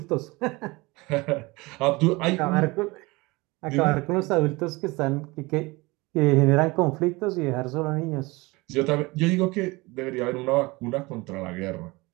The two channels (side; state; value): left; quieter; 23.3 dB